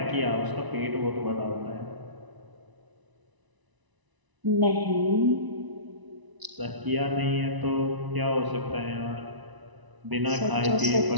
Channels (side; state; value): left; late; 1.0 ms